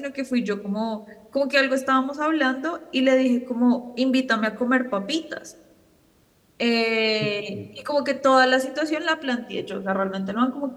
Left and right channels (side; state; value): both; identical; correlation 1.00